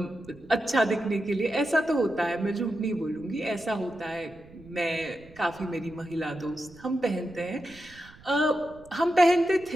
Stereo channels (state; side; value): noise; right; rumble, 23 dB below the sound